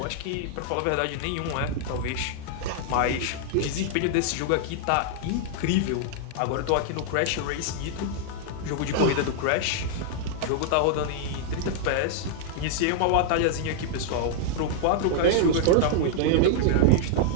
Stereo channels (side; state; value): both; different; correlation -0.01